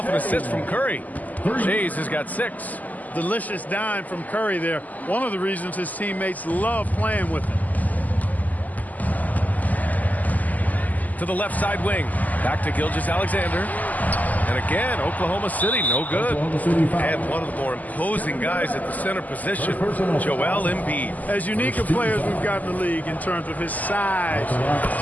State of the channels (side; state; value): right; late; 0.080 ms